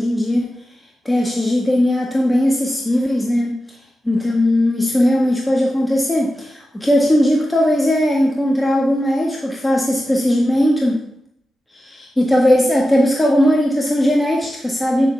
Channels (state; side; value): normal; both; correlation 0.92